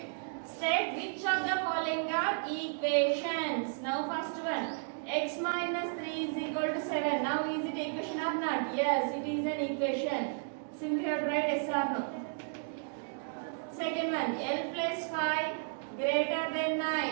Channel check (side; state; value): left; silent; digital silence